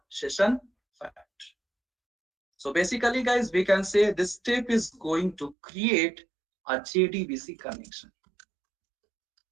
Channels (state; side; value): drops out; left; at 5.6 s